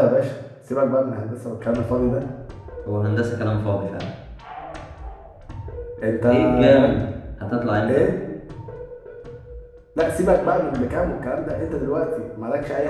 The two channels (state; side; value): identical; both; correlation 1.00